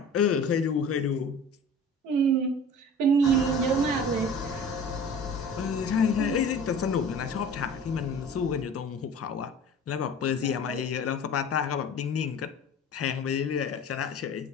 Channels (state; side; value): normal; both; correlation 0.41